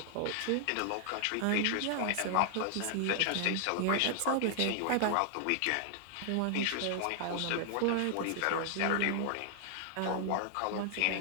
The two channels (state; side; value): different; both; correlation 0.00